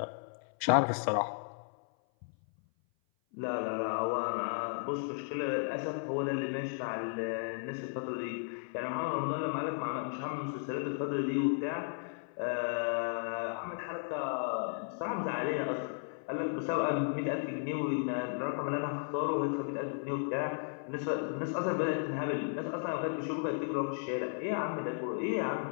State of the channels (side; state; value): right; silent; 55 dB below the other